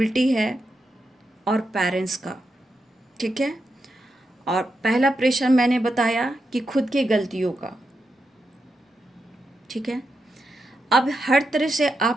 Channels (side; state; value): both; normal; correlation 0.86